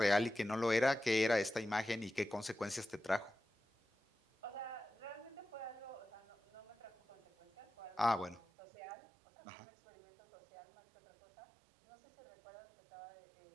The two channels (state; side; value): drops out; left; at 8.4 s